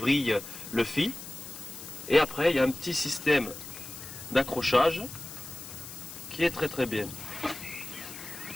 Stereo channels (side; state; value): left; noise; hiss, 12 dB below the sound